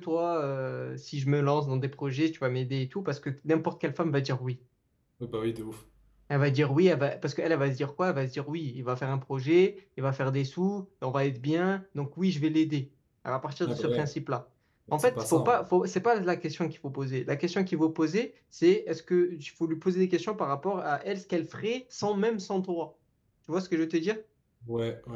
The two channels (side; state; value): both; identical; correlation 1.00